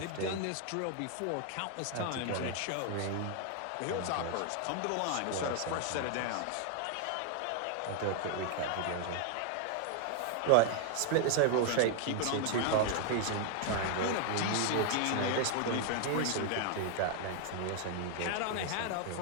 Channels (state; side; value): different; both; correlation 0.00